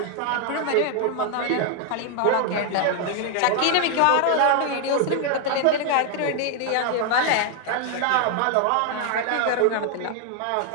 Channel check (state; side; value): different; both; correlation 0.00